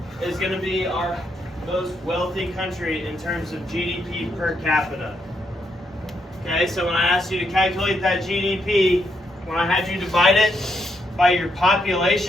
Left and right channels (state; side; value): normal; both; correlation 0.78